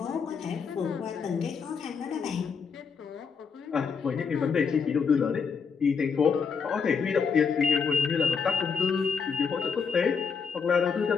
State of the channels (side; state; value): right; quieter; 5.8 dB